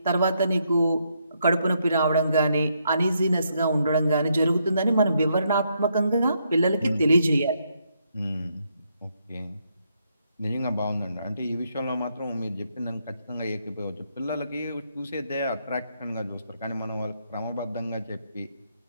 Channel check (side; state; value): both; inverted; correlation -0.76